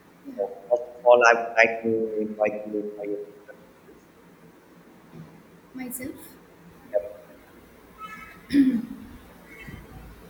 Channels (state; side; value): identical; both; correlation 1.00